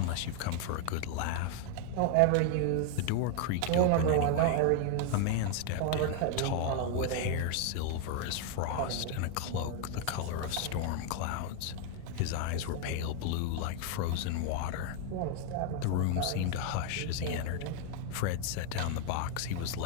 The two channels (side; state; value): both; different; correlation 0.00